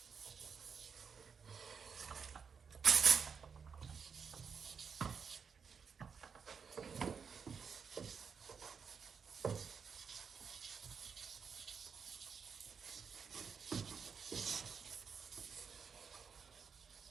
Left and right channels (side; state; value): left; quieter; 6.1 dB